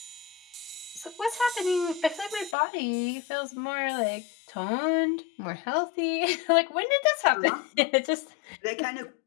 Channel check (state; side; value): drops out; right; at 2.6 s